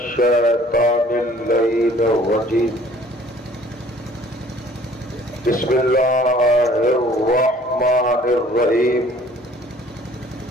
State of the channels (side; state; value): both; normal; correlation 0.54